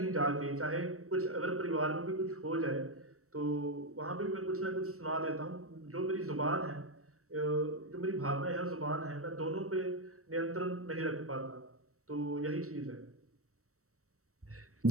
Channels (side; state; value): left; late; 0.64 ms